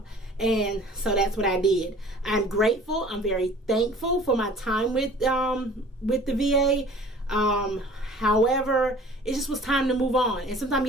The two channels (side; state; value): both; normal; correlation 0.48